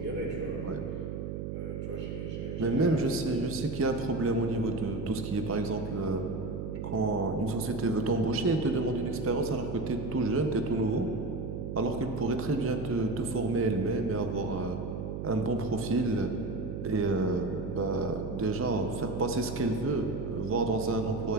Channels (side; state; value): right; noise; hum, 5 dB below the sound